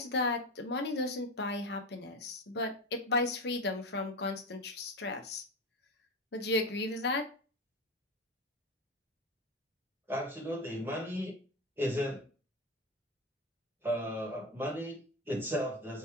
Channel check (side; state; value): both; normal; correlation 0.22